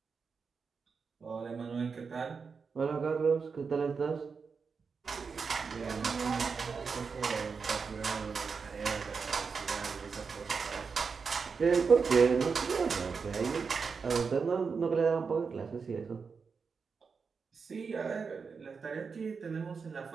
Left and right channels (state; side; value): quieter; left; 5.3 dB